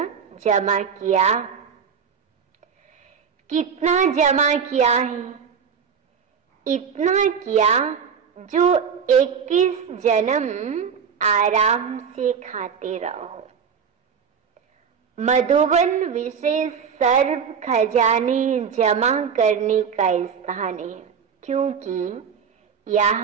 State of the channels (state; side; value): quieter; left; 6.8 dB